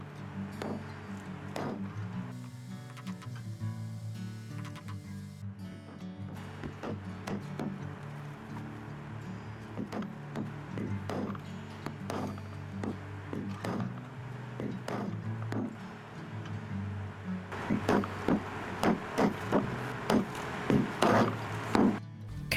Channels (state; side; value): identical; both; correlation 1.00